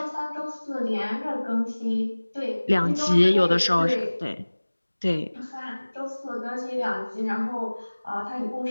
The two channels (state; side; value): inverted; both; correlation -1.00